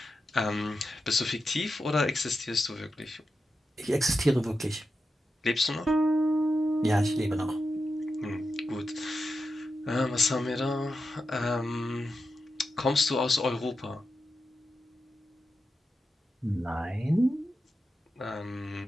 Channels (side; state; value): both; normal; correlation 0.89